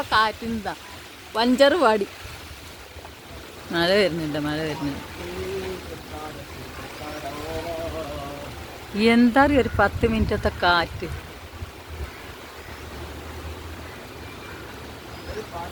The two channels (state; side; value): identical; both; correlation 1.00